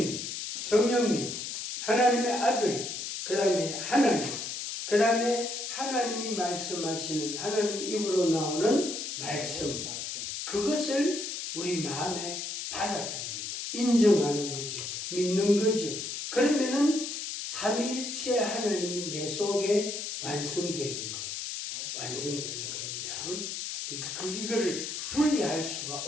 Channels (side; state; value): left; noise; hiss, 5 dB below the sound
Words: 성령님, 하나님의 아들, 그 다음에 하나님, 그 다음에 하나님이 말씀하시는 하나님 입으로 나오는 말씀, 그것을 우리 마음에 받아들이는 거, 인정하는 거죠. 믿는 거죠. 그러면은 삼위일체 하나님이 내 속에 완성되는 거예요. 완성되는 겁니다. 이거를 분리할 수가